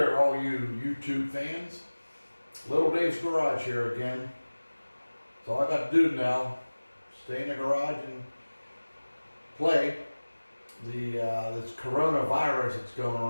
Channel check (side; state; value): both; inverted; correlation -1.00